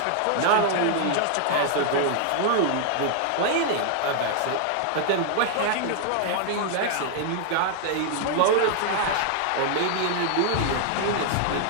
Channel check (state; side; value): different; both; correlation 0.00